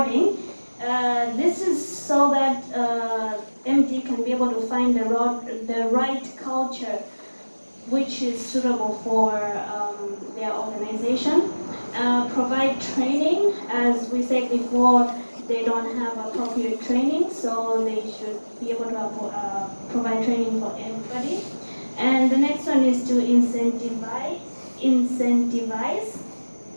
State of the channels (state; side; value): inverted; both; correlation -1.00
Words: This is so that MD can be able to find the right culture which is suitable for their organization. Provide training, as we said before, they don't have appropriate training, so they should be able to provide training for everybody. And the next one is to incentivize.